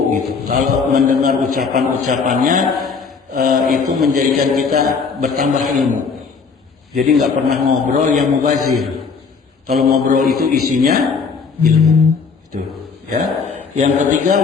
gitu. Kalau mendengar ucapan-ucapannya, itu menjadikan kita bertambah ilmu. Jadi nggak pernah ngobrol yang mubazir. Kalau ngobrol itu isinya ilmu. Itu ya. Yang ketiga,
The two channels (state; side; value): quieter; right; 5.3 dB